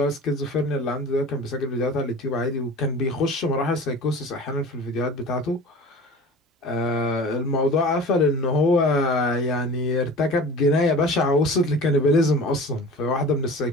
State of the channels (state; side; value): normal; both; correlation 0.39